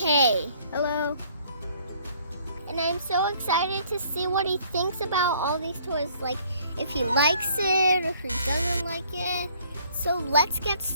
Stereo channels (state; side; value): inverted; both; correlation -0.61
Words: Hello. And I'm so excited to see what he thinks about all these toys. Like if he likes it or if he doesn't like it. So let's get